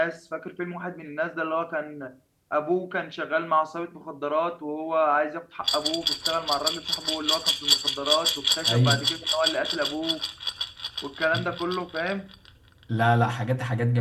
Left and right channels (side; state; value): both; identical; correlation 1.00